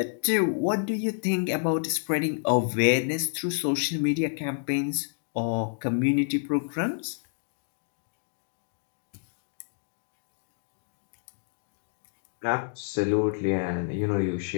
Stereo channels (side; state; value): right; silent; digital silence